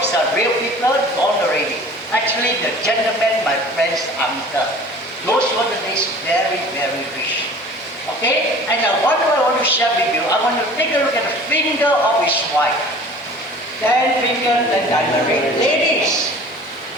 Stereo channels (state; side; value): normal; both; correlation 0.45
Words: are real people, gone already. Actually, the gentleman, my friend's uncle. Those were the days very, very rich. Okay, and what I want to share with you, I want to take a look at the finger of his wife. 10 fingers and diamond. Ladies,